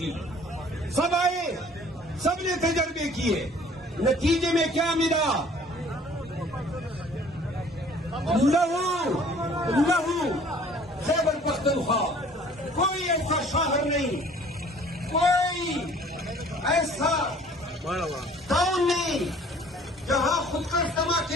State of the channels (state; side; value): normal; both; correlation 0.53